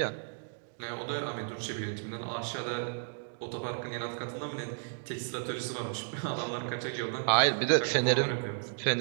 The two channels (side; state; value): left; silent; digital silence